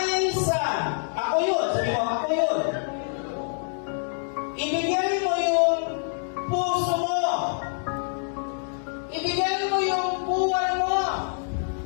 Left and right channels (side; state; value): right; silent; digital silence